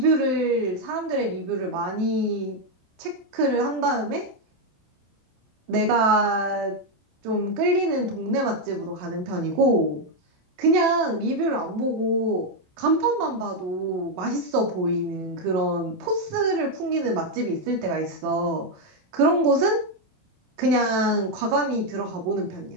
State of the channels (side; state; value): left; late; 28 ms